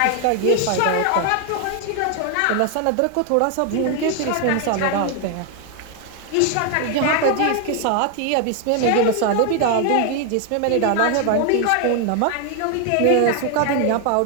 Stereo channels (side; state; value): both; different; correlation 0.00